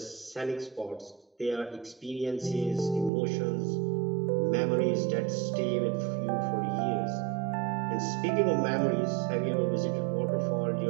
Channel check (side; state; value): left; drops out; at 3.1 s